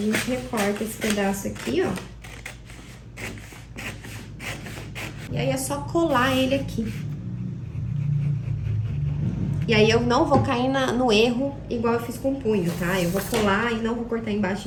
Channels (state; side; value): identical; both; correlation 1.00